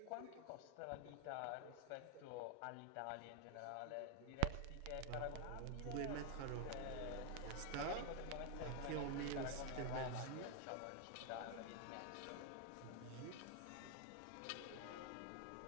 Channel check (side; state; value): both; different; correlation 0.01